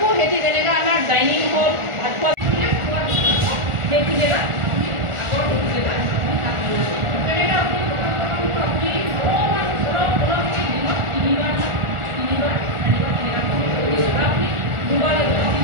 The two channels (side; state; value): left; late; 1.4 ms